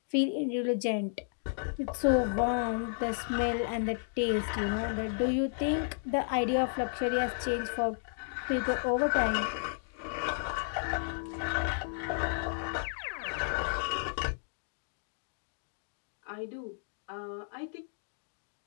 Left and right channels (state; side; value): silent; right; digital silence